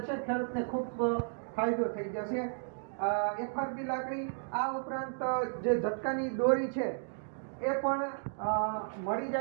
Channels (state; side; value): silent; left; digital silence